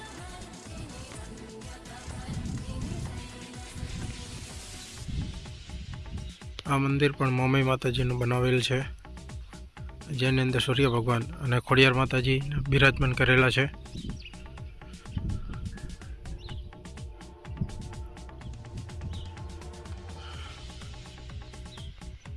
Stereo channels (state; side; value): identical; both; correlation 1.00